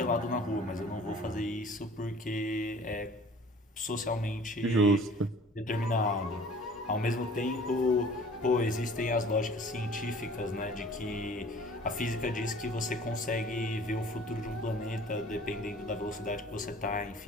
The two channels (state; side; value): normal; both; correlation 0.49